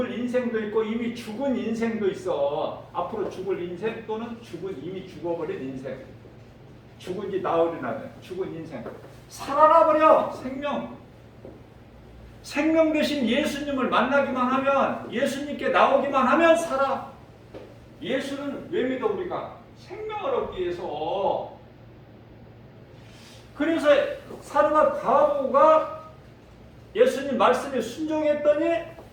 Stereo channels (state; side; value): identical; both; correlation 1.00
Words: 있고 이미 죽은 인생도 있어. 앞으로 죽을 인생 또는 이미 죽어버린 인생. 죽은 지 나흘이나 돼. 죽은 인생. 살아나 버려. 생명 대신 예수님을 만나기만 하면, 예수님께 나오기만 하면 살아. 예수는 왜 믿어 우리가? 생명을 얻기 위해서. 그래서 사르밧 과부가 예수님 말씀에 순종했더니